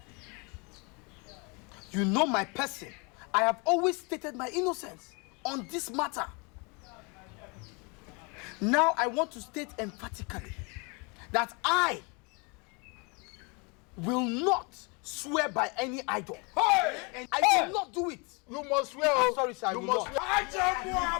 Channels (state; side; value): quieter; right; 31.1 dB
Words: my person. I have always stated my innocence on this matter. Now I want to state emphatically that I will not swear by any idol. Hey! And I will not do it. You must swear. I'm sorry, sir. You I will must not.